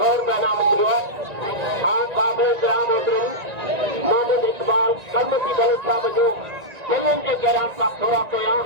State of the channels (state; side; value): late; left; 1.9 ms